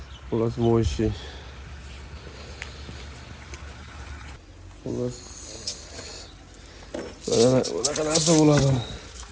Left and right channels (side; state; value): both; identical; correlation 1.00